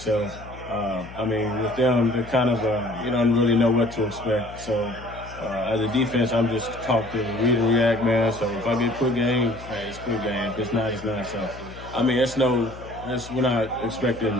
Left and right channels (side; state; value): left; noise; hum, 15 dB below the sound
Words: with them, they're kind of you don't really know what to expect. So, as a defense, I'm just taught to read and react, man. So if I get quick game, hey, it's quick game. If it's not, it's not. So, we're not